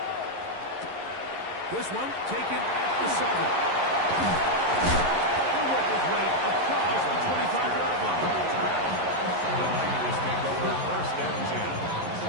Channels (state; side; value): late; left; 11 ms